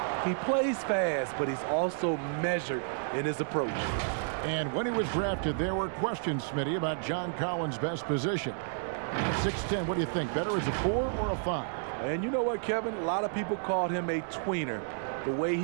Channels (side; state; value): left; silent; 57 dB below the other